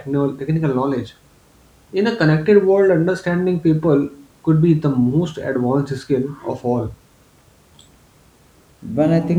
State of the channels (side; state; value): both; identical; correlation 1.00